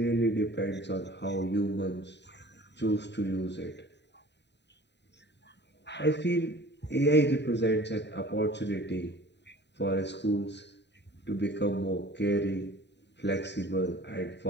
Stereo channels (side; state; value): right; late; 0.50 ms